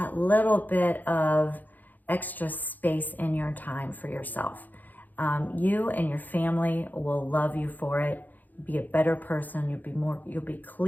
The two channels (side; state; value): right; late; 0.084 ms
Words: little bit of extra space in your time for yourself? You and your family will love you for it. Be a better person. You'll be